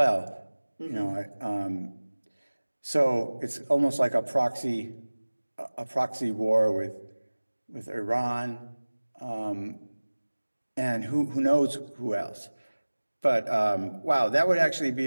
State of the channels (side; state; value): both; inverted; correlation -1.00